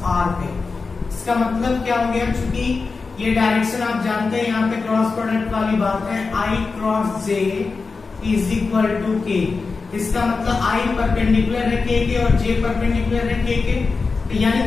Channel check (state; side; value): quieter; right; 4.4 dB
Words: r पे। इसका मतलब क्या हो गया? चूंकि ये डायरेक्शन आप जानते हैं, यहाँ पे क्रॉस प्रोडक्ट वाली बात है, I cross j is equal to k। इसका मतलब I परपेंडिकुलर है k के और j परपेंडिकुलर है k के, तो यानी